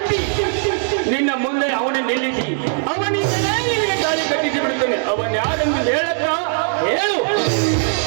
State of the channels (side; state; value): left; silent; digital silence